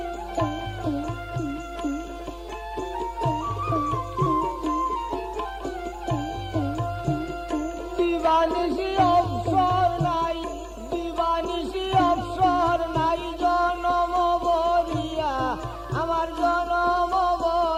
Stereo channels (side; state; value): both; identical; correlation 1.00